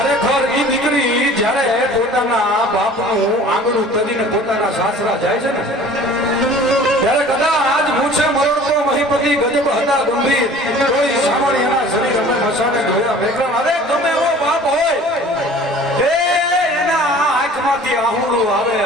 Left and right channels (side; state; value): both; normal; correlation 0.46